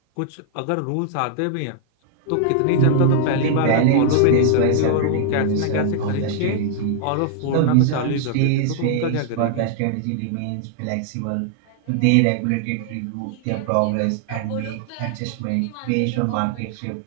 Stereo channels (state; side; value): different; both; correlation 0.00